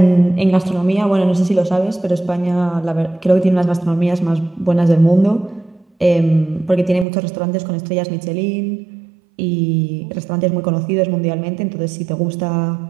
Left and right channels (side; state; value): left; drops out; at 7.1 s